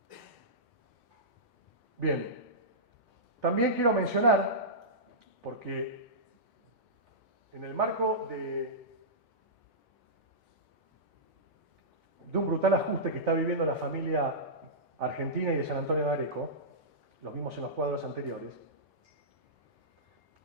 Bien, También quiero mencionar, porque en el marco de un brutal ajuste que está viviendo la familia argentina y de San Antonio de Areco, lo vimos en los cuadros anteriores,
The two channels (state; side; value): normal; both; correlation -0.16